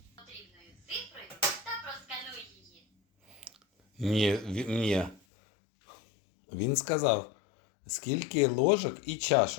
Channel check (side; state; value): right; drops out; at 5.2 s